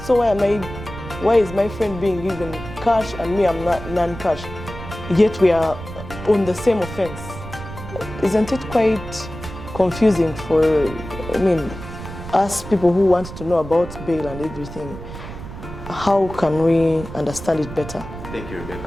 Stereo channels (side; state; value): right; noise; rumble, 12 dB below the sound